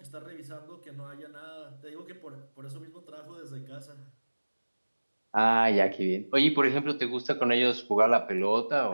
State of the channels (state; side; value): inverted; both; correlation -1.00